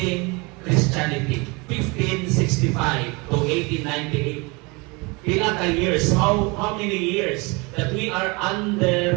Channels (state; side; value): quieter; left; 27.5 dB